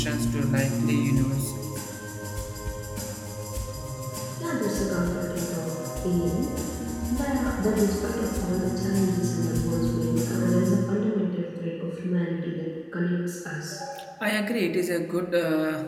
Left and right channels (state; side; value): identical; both; correlation 1.00